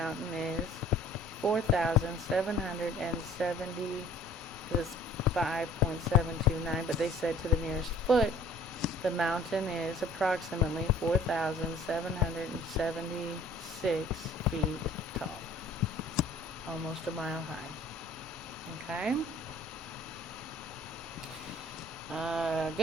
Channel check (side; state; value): both; normal; correlation 0.53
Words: is 4,770. This is 5.729, but they said to the nearest foot, the mountain is approximately 4,776 feet tall. Almost a mile high. Okay?